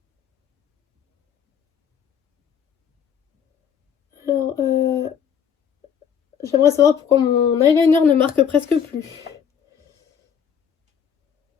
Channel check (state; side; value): quieter; right; 7.8 dB